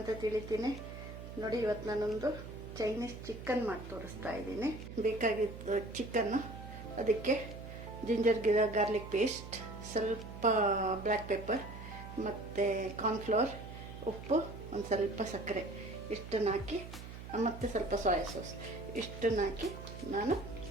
ತಿಳಿತೀನಿ. ನೋಡಿ, ಇವತ್ತು ನಾನೊಂದು ಚೈನೀಸ್ ಚಿಕನ್ ಮಾಡಿ ತೋರಿಸ್ತಾ ಇದ್ದೀನಿ. ಬೇಕಾಗಿದ್ದು ಚಿಕನ್ನು, ಅದಕ್ಕೆ ಜಿಂಜರ್ ಗಾರ್ಲಿಕ್ ಪೇಸ್ಟ್, ಸ್ವಲ್ಪ ಬ್ಲ್ಯಾಕ್ ಪೆಪ್ಪರ್ ಮತ್ತು ಕಾರ್ನ್ಫ್ಲವರ್, ಉಪ್ಪು, ಒಂದು ಸ್ವಲ್ಪ ಸಕ್ಕರೆ ಇಷ್ಟನ್ನು ಹಾಕಿ, ಮತ್ತು ಸ್ವಲ್ಪ ಸೋಯಾ ಸಾಸ್ ಇಷ್ಟನ್ನು ಹಾಕಿ ನಾನು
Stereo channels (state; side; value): noise; right; hum, 11 dB below the sound